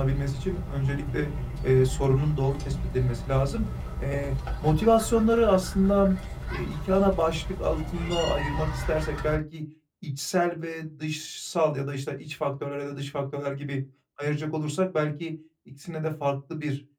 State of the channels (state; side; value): identical; both; correlation 1.00